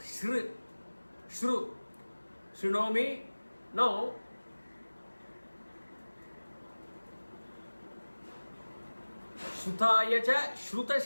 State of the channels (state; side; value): inverted; both; correlation -1.00